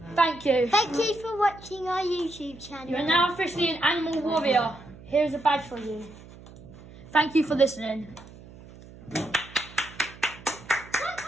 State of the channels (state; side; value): noise; right; hum, 19 dB below the sound